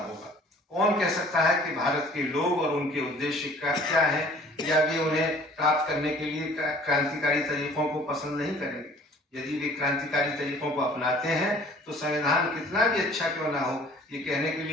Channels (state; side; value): normal; both; correlation 0.52